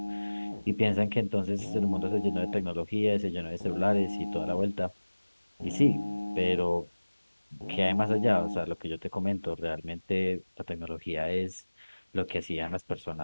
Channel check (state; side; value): inverted; both; correlation -1.00